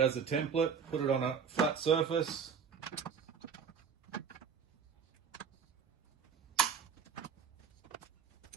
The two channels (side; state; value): left; quieter; 6.7 dB